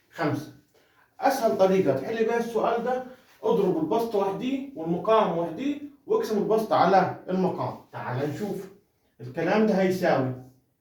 5. أسهل طريقة تحل بيها السؤال ده، اضرب البسط وحديه والمقام وحديه واقسم البسط على المقام. تعال نشوف. الكلام ده هيساوي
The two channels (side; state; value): both; identical; correlation 1.00